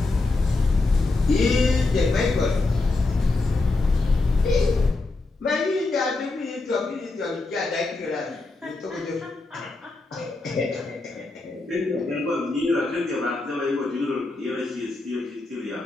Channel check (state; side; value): quieter; right; 3.3 dB